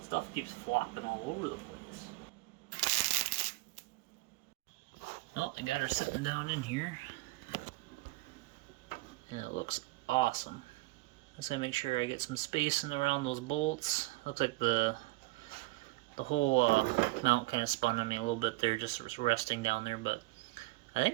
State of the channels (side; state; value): left; quieter; 21.6 dB